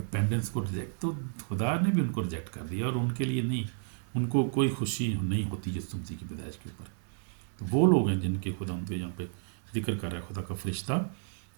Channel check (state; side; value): silent; left; digital silence